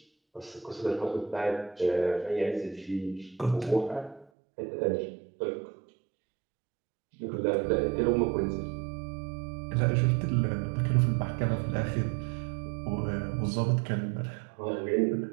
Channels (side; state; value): left; drops out; at 4.2 s